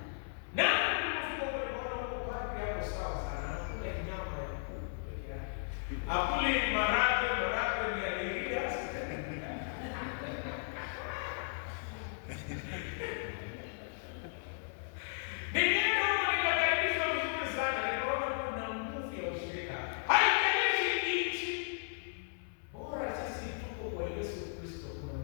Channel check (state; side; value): silent; right; 54 dB below the other